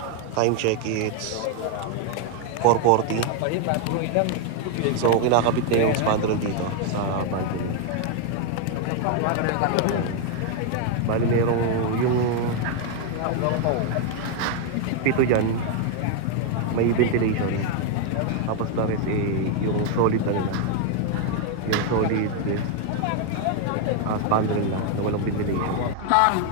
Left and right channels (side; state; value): both; different; correlation 0.01